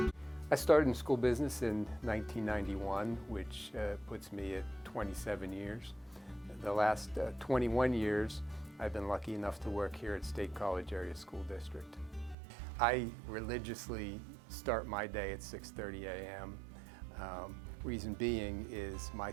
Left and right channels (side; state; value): left; drops out; at 12.4 s